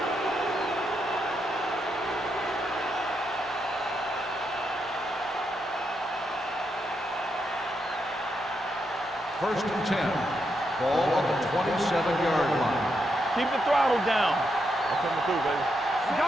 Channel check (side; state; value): both; normal; correlation 0.82